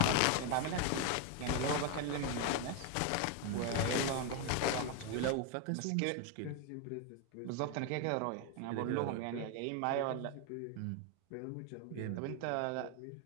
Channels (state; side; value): different; both; correlation 0.01